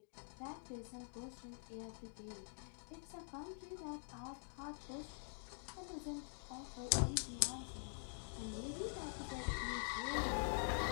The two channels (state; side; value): silent; right; digital silence